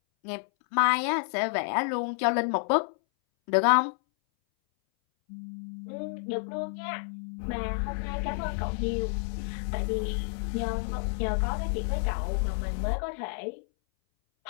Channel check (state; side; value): silent; right; 58 dB below the other